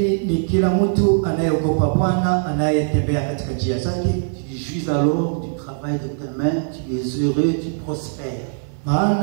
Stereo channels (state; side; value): silent; left; 55 dB below the other